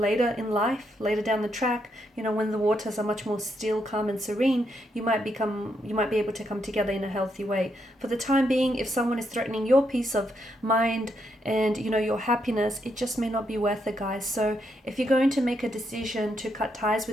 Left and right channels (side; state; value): both; normal; correlation 0.79